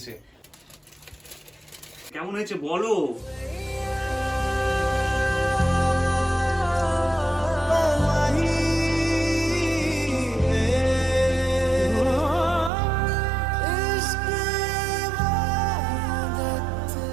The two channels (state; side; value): drops out; left; at 12.7 s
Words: কেমন হয়েছে বলো।